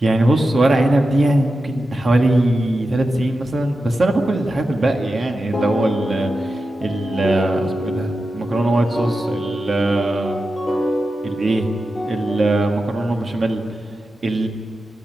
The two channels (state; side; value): normal; both; correlation 0.91